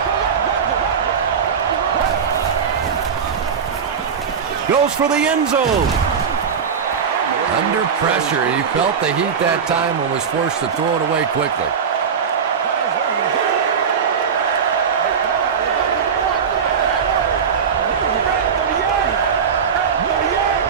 Goes for the end zone. Under pressure. He felt the heat that time and was forced to throw it away quickly.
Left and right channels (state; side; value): quieter; left; 6.7 dB